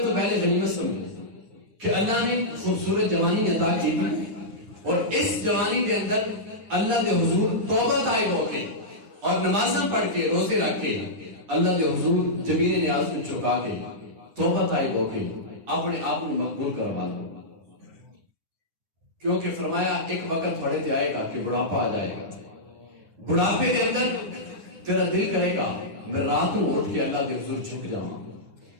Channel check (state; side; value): late; left; 9.8 ms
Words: تو پہلے غنیمت سمجھو کہ اللہ نے خوبصورت جوانی عطا کی تھی، اور اس جوانی کے اندر اللہ دے حضور توبہ طائب ہو کے اور نمازاں پڑھ کے روزے رکھ کے اللہ دے حضور جبین نیاز کو چکا کے توبہ طائب ہو کے اپنے آپ میں مقبول کروا لو. کیونکہ فرمایا ایک وقت تھوڑے تے آئے گا کہ بڑھاپا آ جائے گا، بڑھاپے کے اندر تیرا دل کرے گا میں رات کو اٹھ کے اللہ دے حضور جھک جاواں،